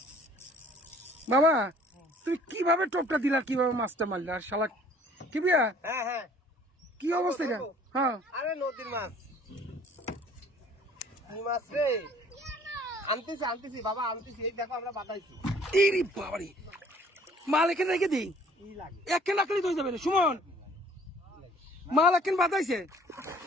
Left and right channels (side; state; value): both; normal; correlation 0.55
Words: বাবা তুমি কিভাবে টোপটা দিলা, কিভাবে মাছটা মারলে? আর শালা কি বিয়া, হ্যাঁ হ্যাঁ, কি অবস্থা এটা? হ্যাঁ আরে নদীর মাছ, কি মাছ রে, আনতেছি বাবা, আনতেছি, এই দেখো আমরা বাতাইছি। ইরি বাবারি, মাল এখানে রেখে দিই, একখান রাখলেই তো হয়ে যাবে রে সুমন। মাল একখান বাতাইছে।